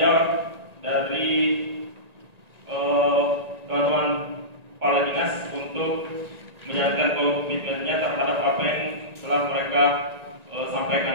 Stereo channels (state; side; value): late; left; 1.9 ms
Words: dari teman-teman kepala dinas untuk menjalankan komitmennya terhadap apa yang telah mereka